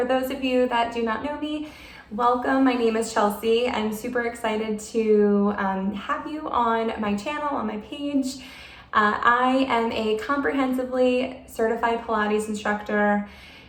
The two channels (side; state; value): both; identical; correlation 1.00